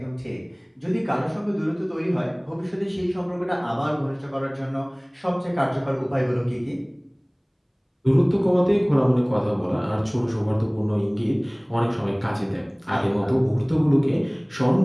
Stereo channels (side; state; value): both; identical; correlation 1.00